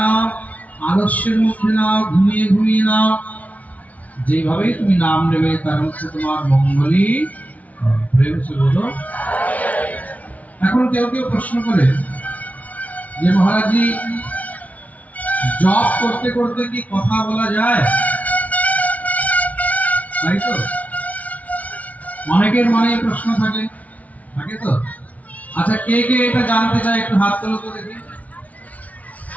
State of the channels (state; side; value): late; right; 0.070 ms